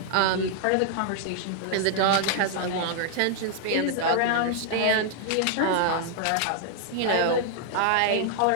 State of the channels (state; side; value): different; both; correlation -0.01